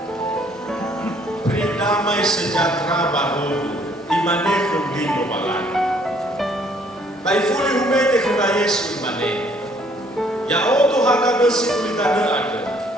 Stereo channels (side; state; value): both; normal; correlation 0.63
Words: damai sejahtera baru imane kundino balan. Bai fuli humete kena Yesu imane. Ya oto haka besi kulitane ada.